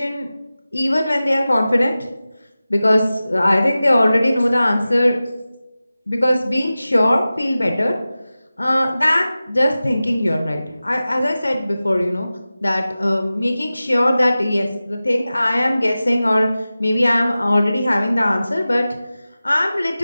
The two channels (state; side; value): inverted; both; correlation -0.96